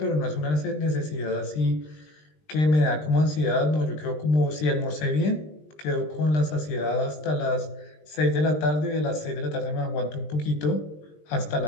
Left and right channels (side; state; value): right; late; 20 ms